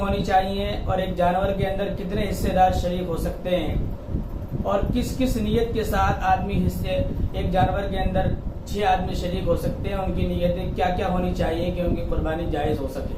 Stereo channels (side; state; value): both; identical; correlation 1.00